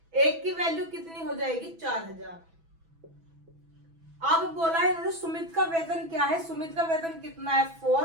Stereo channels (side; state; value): left; late; 6.1 ms